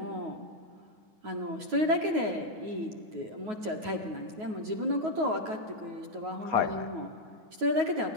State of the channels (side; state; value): left; late; 9.4 ms